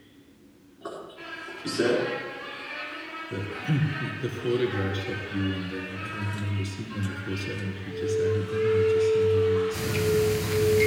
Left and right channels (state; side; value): identical; both; correlation 1.00